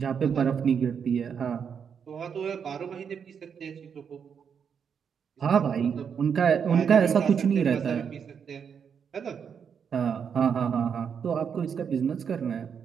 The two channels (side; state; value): left; quieter; 7.1 dB